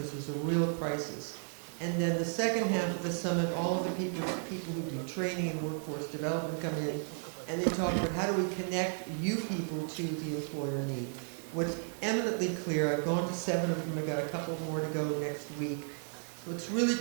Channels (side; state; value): left; silent; 55 dB below the other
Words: there's a real crisis. And then the second half of the summit, all of the people who do training and workforce development come in, and they talk about how do we connect you people to the employer need. What's eminently clear, I've gone to 7 of them, I've got a couple more to go next week. What's really